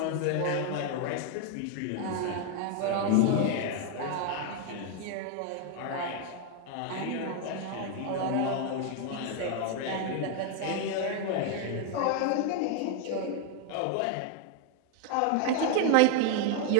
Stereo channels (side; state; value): both; different; correlation 0.00